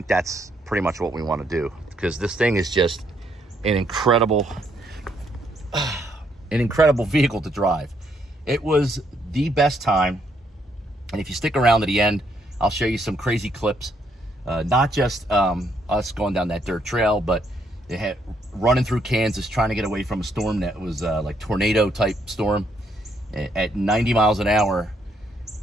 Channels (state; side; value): normal; both; correlation 0.73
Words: that's pretty much what we want to do, because this thing is just an incredible vehicle to drive. It was the best time. And if you stick around to the end, I'll show you some crazy clips. Not just us going down that dirt trail, but they had running through Kansas trying to get away from a storm that was like tornado type storm at 90 miles an hour,